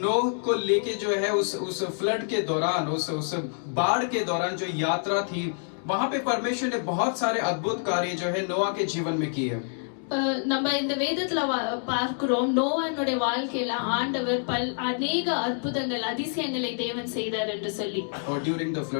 नोह को लेके जो है उस फ्लड के दौरान, उस बाढ़ के दौरान जो यात्रा थी, वहां पे परमेश्वर ने बहुत सारे अद्भुत कार्य जो है नोआ के जीवन में किए। நம்ம இந்த வேதத்துல பார்க்கிறோம், நோவானுடைய வாழ்க்கையில ஆண்டவர் அநேக அற்புதங்கள், அதிசயங்களை தேவன் செய்தார் என்று சொல்லி, ड्यूरिंग द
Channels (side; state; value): right; silent; 60 dB below the other